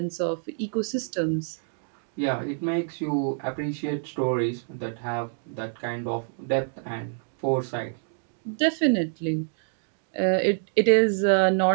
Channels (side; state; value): left; silent; digital silence